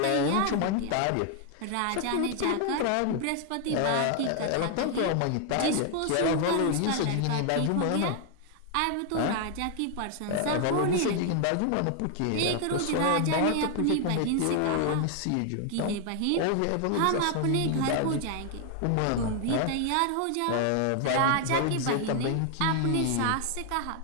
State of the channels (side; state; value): both; different; correlation 0.00